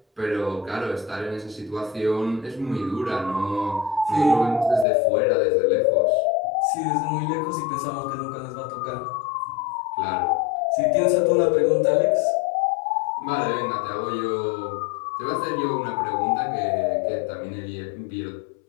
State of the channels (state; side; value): drops out; right; at 4.9 s